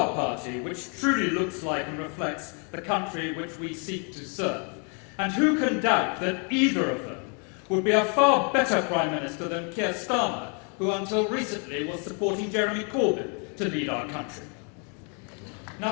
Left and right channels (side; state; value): right; quieter; 38.1 dB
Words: party, which truly looks like and reflects the country which we seek to serve. And who can doubt that either of them would be a far better Prime Minister than Keir Starmer, who until recently was supporting Jeremy Corbyn to lead our country.